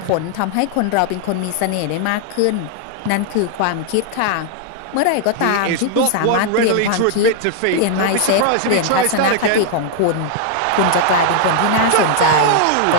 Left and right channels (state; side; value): different; both; correlation -0.01